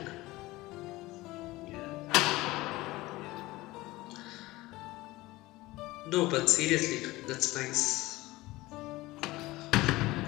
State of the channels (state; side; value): quieter; right; 19.4 dB